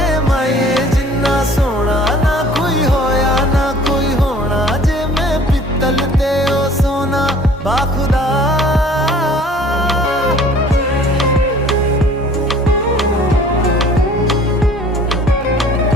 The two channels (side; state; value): both; normal; correlation 0.51